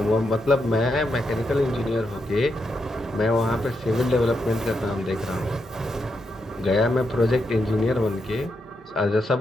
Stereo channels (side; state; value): both; normal; correlation 0.83